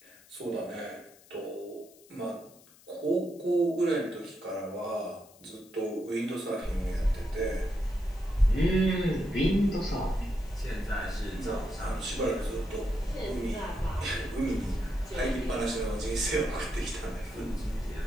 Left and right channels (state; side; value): noise; left; hiss, 25 dB below the sound